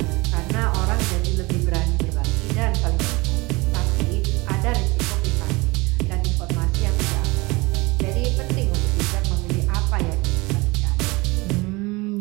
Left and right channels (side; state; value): left; quieter; 24.0 dB